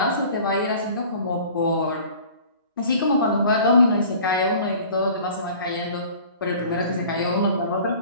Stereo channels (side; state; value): both; inverted; correlation -0.46